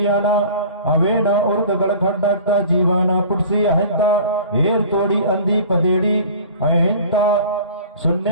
अवेना उर्क गड़खंडकता जीवाना पुटसी अहिंता, हेर तोड़ी अंधी पदेड़ी अहिंता,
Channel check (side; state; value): both; inverted; correlation -0.42